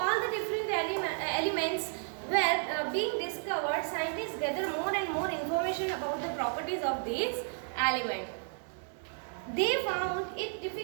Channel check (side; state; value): left; silent; 56 dB below the other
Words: all the different elements were being discovered. Scientists gather more and more information about the properties of these elements. They found it